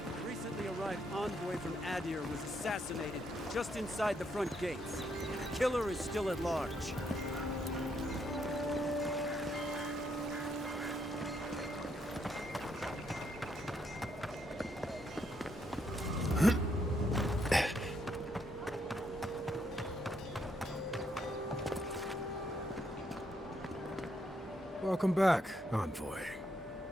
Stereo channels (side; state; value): both; normal; correlation 0.76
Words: recently arrived envoy from Adir was assassinated just inside the front gates. The killer is still at large. Welcome back, Envoy.